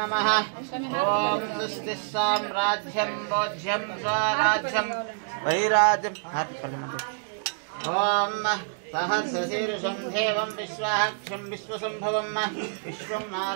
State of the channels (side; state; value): left; silent; digital silence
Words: ओम स्वस्ति साम्राज्यं भोज्यं स्वराज्यं वैराज्यं ओम सहस्रशीर्षं देवं विश्वाक्षं विश्वसंभवं विश्वं